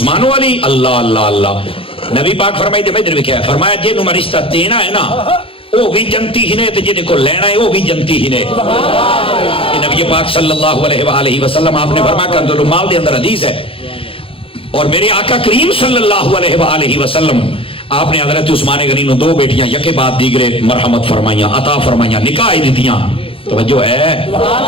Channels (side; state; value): right; late; 0.27 ms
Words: علی اللہ اللہ اللہ نبی پاک فرمائی دے میں ادھر کیا ہے فرمایا جے نو رشتہ دینا ہے نا وہ بھی جنتی ہی نے تے جے کو لینا ہے وہ بھی جنتی ہی نے یہ نبی پاک صلی اللہ علیہ وآلہ وسلم آپ نے فرمایا کنز المال دے اندر حدیث ہے اور میرے آقا کریم صلی اللہ علیہ وآلہ وسلم آپ نے حضرت عثمان غنی نو دو بیٹیاں یکے بعد دیگرے مرحمت فرمائیاں عطا فرمائیاں نکاح دیتیاں توجہ ہے